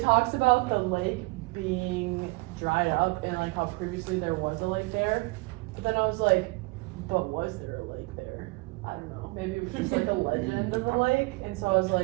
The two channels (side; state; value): left; quieter; 25.5 dB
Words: talks about the lake being dried up and like how previously there was a lake there. But then I was like, but was there a lake there? I don't know. Maybe it was just like a legend of a lake. And so I was